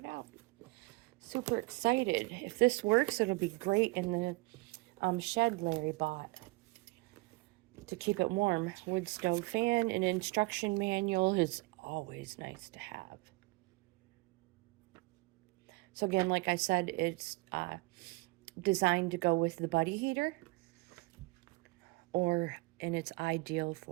out. Super excited. If this works, it'll be great in the shed Larry bought to keep it warm. Wood stove fan. An instruction manual is always nice to have. So again, like I said, it's designed to go with the buddy heater, and it's ideal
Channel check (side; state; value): left; quieter; 24.7 dB